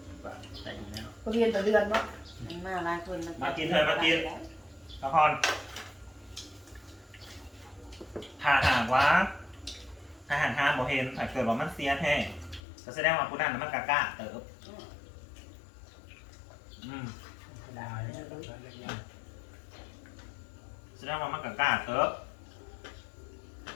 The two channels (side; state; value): right; drops out; at 12.6 s